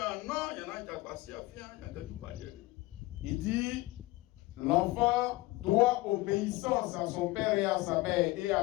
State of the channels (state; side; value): quieter; right; 20.0 dB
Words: dit, l'enfant doit obéissance à son père et à sa mère et